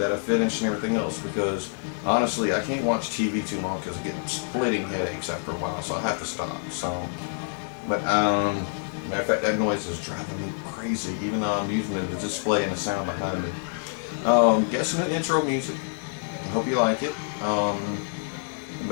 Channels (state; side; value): silent; right; 60 dB below the other